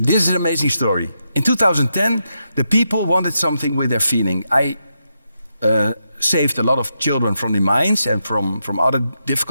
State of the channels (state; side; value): inverted; both; correlation -0.84